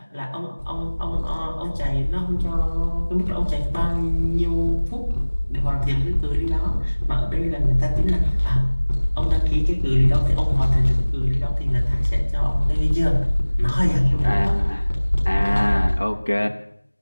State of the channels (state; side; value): inverted; both; correlation -1.00